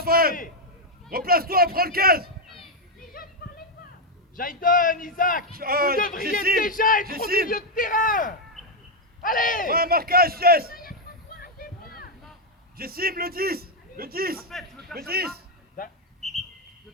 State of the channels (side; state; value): both; normal; correlation 0.02